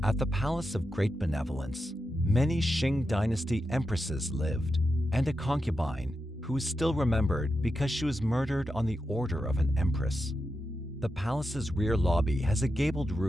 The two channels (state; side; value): normal; both; correlation 0.88